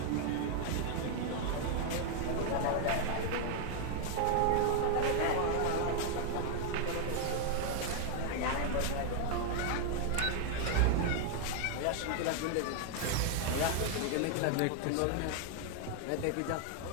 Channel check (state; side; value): different; both; correlation 0.00